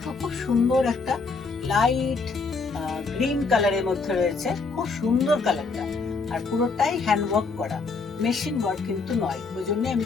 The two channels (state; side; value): quieter; right; 4.3 dB